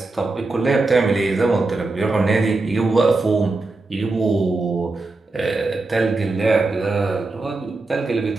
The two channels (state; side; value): quieter; left; 3.3 dB